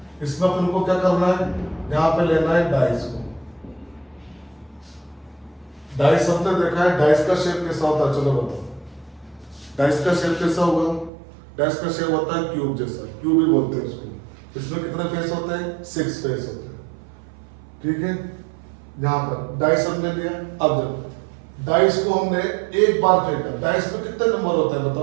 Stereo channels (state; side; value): drops out; left; at 11.1 s